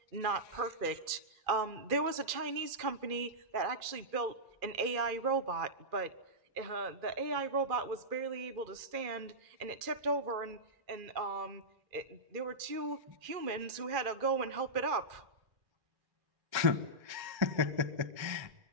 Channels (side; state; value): left; late; 2.4 ms